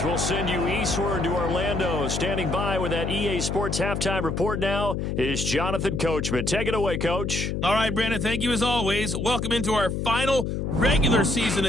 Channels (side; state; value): left; noise; hum, 2 dB below the sound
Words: we'll send you eastward to Orlando. Standing by with that EA Sports halftime report now is Jonathan Coachman. Take it away, Coach. All right, Brandon, thank you as always. Welcome into our final regular season